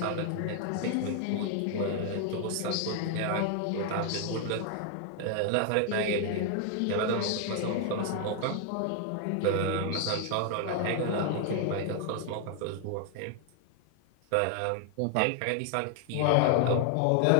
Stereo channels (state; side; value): different; both; correlation 0.00